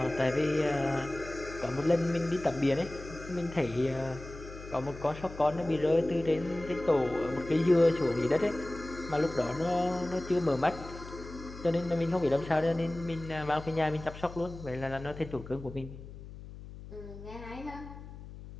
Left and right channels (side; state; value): left; noise; hum, 14 dB below the sound